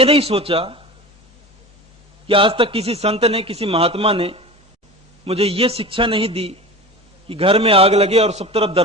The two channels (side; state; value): both; normal; correlation 0.33